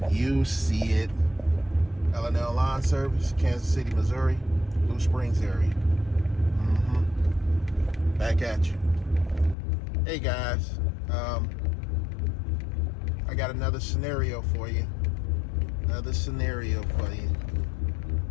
You see it. L&L Lawn Service, Kansas City, Missouri, Blue Springs area. Back at you. Hey guys, I got another scenario for you. I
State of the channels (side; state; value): right; drops out; at 9.6 s